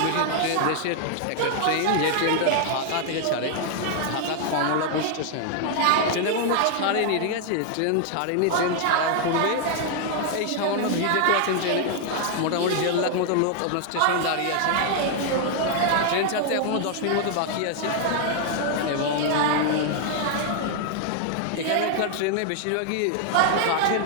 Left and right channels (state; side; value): different; both; correlation 0.00